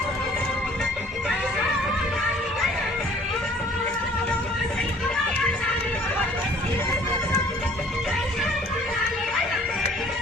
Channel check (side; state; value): both; normal; correlation 0.54